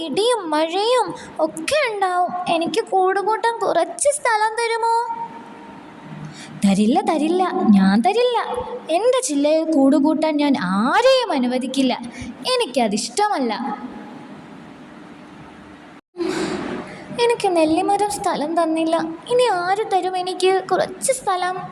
ഇടിയും മഴയും ഒക്കെ ഉണ്ടാവും. എനിക്ക് കൂടുകൂട്ടാൻ കുറച്ച് സ്ഥലം തരുമോ? തരില്ല, തരില്ല, ഞാൻ തരില്ല. എൻ്റെ ചില്ലയിൽ കൂടുകൂട്ടാൻ ഞാൻ ആരെയും അനുവദിക്കില്ല. എനിക്കതിഷ്ടമല്ല. എനിക്ക് നെല്ലിമരം സ്ഥലം തന്നില്ല. ഇനി ആര് തരും എനിക്ക് കുറച്ച് സ്ഥലം?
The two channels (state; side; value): identical; both; correlation 1.00